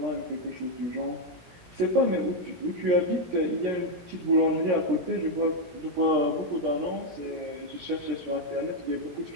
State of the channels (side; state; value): left; late; 17 ms